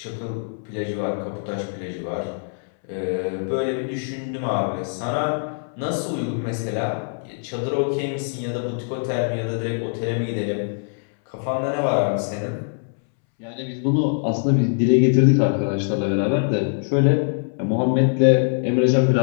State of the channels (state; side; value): silent; right; 62 dB below the other